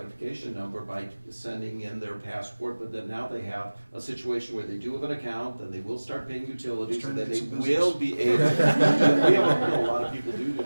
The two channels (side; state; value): both; inverted; correlation -1.00